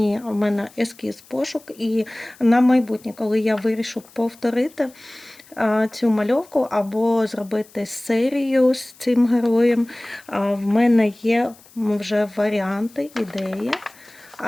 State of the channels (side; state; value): left; noise; hiss, 25 dB below the sound